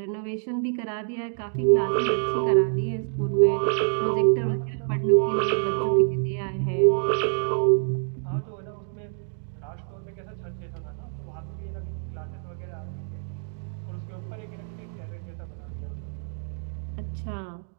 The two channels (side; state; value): left; silent; digital silence